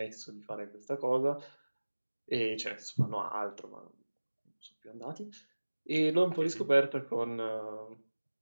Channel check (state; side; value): inverted; both; correlation -1.00